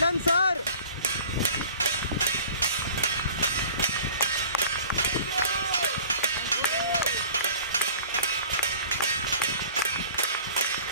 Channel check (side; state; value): both; inverted; correlation -0.46